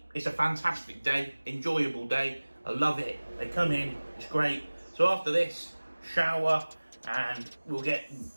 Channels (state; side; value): inverted; both; correlation -1.00